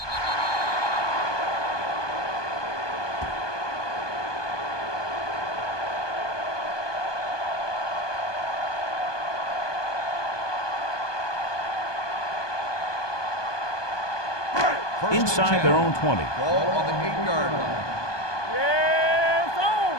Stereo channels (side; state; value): right; late; 1.2 ms